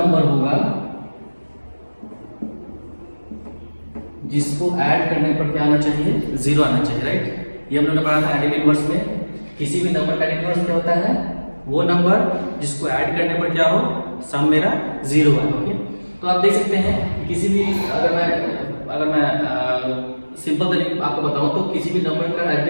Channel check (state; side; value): inverted; both; correlation -1.00